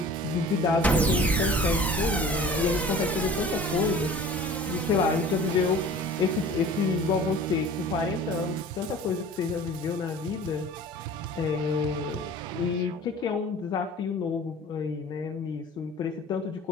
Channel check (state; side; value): normal; both; correlation 0.44